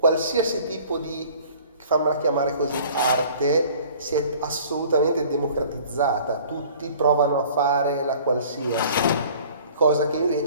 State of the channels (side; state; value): both; inverted; correlation -0.50